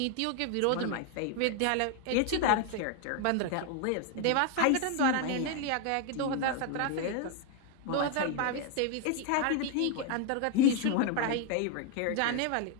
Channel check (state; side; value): different; both; correlation 0.01